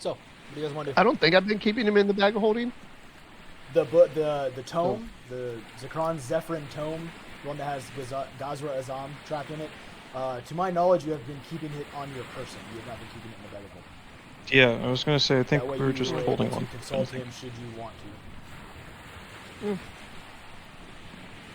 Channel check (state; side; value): identical; both; correlation 1.00